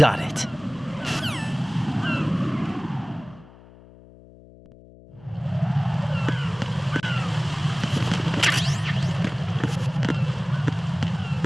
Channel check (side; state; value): left; noise; hum, 22 dB below the sound